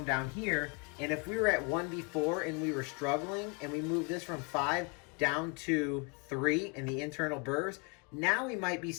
down here, and if we were at 1 before and we were struggling and we moved this from 5 down to 3 in the internal burrs, now we might be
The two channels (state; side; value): quieter; right; 32.2 dB